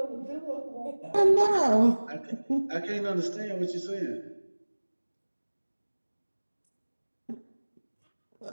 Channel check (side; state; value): both; inverted; correlation -1.00